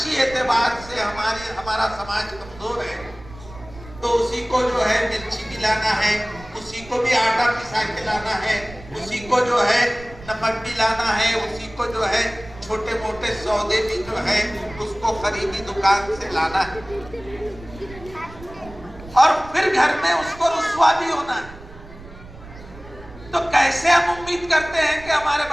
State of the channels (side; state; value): right; noise; rumble, 18 dB below the sound